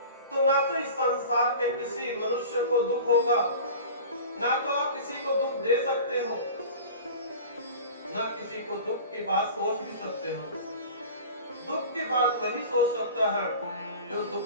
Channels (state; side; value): inverted; both; correlation -0.37